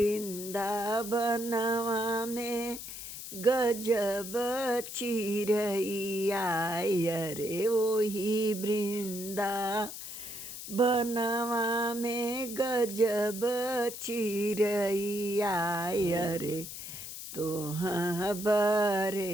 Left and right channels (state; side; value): noise; left; hiss, 9 dB below the sound